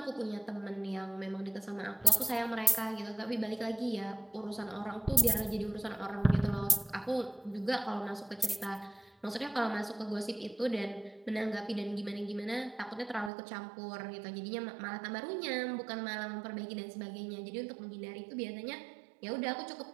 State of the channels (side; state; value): left; drops out; at 13.3 s